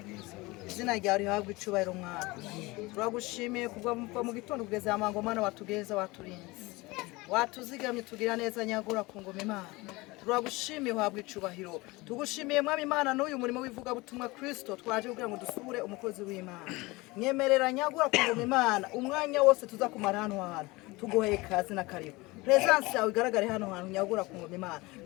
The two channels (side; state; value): right; quieter; 22.6 dB